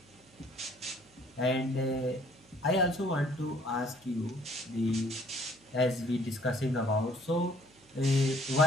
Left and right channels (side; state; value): right; noise; hum, 29 dB below the sound